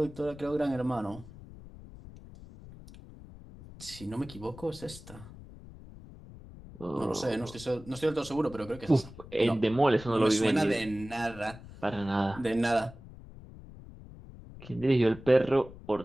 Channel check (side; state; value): left; noise; rumble, 17 dB below the sound